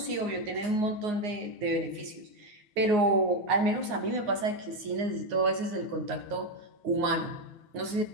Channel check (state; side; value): late; left; 9.6 ms